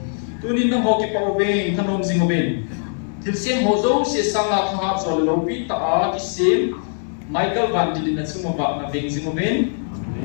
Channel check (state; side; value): silent; right; digital silence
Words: tunin na hoki pa obeng thanom sing oben til sem ho zo se sanga tha chol lo pi ta a ki sem Michael van di na chuma ba na beng sing oben